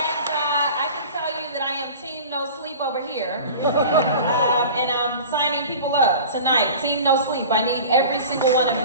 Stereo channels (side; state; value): both; inverted; correlation -0.39